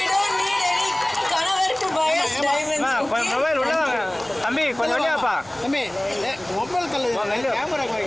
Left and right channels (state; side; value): noise; right; rumble, 25 dB below the sound